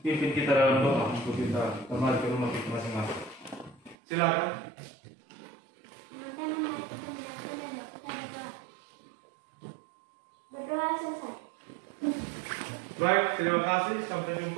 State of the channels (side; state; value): left; drops out; at 4.0 s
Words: pimpin kita dalam doa untuk kita kembali ke rumah kita masing-masing. Silakan. Berdoa selesai. Baik, terima kasih. Sampai